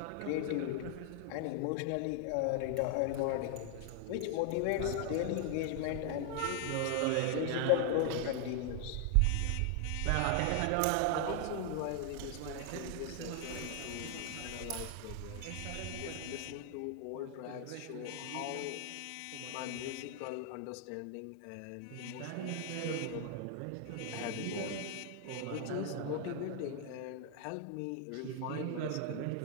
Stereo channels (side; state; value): both; different; correlation 0.00